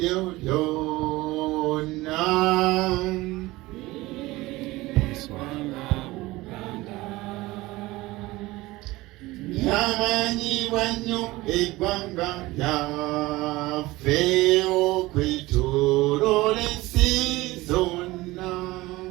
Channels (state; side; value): quieter; left; 19.7 dB